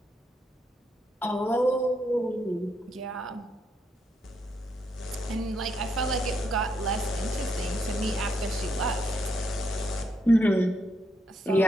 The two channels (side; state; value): both; normal; correlation 0.78